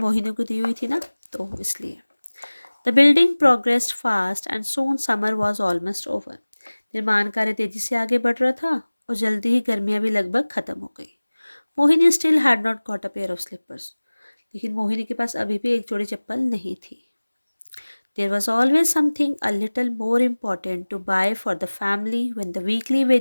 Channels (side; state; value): both; inverted; correlation -1.00